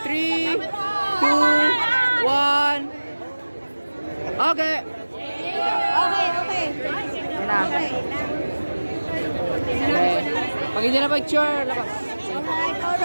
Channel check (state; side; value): inverted; both; correlation -1.00